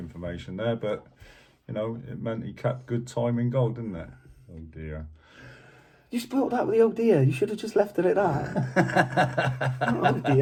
there, but it meant he kept good time in goal, didn't it? Oh dear. You spoiled that with the oh dear. You should have just left it at that. Oh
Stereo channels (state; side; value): identical; both; correlation 1.00